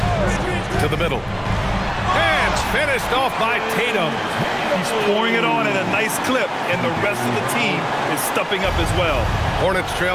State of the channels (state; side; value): identical; both; correlation 1.00